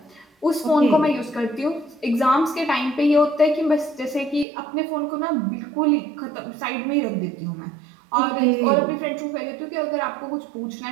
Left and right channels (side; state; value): left; drops out; at 4.5 s